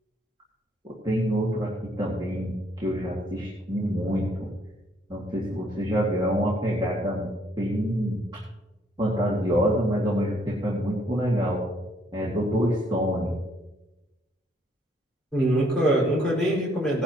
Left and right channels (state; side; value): normal; both; correlation 0.67